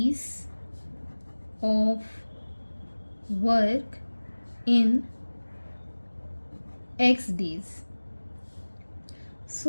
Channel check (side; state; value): both; inverted; correlation -1.00